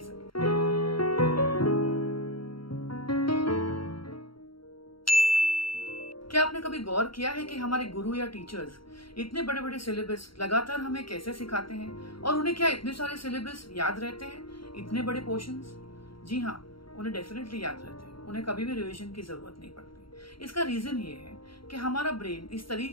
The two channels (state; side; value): late; right; 0.74 ms